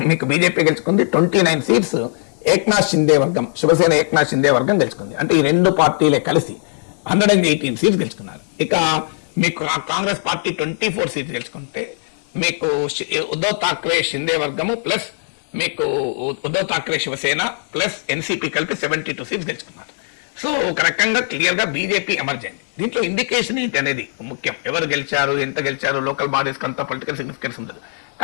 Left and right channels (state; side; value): silent; right; digital silence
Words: మీకు బీజేపీ గెలుచుకుంది. 29 సీట్స్ ఏక్నాథ్ షిందే వర్గం, శివసేన ఏక్నాథ్ షిందే వర్గం గెలుచుకుంది. అంటే ఈ రెండు పార్టీలే కలిసి 118 సీట్స్ గెలుచుకున్నారు. ఇక మీకు కాంగ్రెస్ పార్టీ 24 సీట్స్ గెలుచుకుంటే మీకు ఉద్ధవ్ ఠాక్రే షిందే వర్గము ప్లస్ మీకు ఉద్ధవ్ ఠాక్రే శివసేన ప్లస్ ఎన్సీపీ కలిపి 72 సీట్స్ గెలుచుకున్నారు. సో ఒక రకంగా క్లియర్ గా బీజేపీ ఎమర్జ్ అయింది. దీంట్లో ఇండికేషన్ ఏంటి అనేది ముఖ్యం. ఎవరు గెలిచారు, ఎంత గెలిచారు, లోకల్ బాడీస్ అంతా పొలిటికల్ సిగ్నిఫికెన్స్ ఉండదు.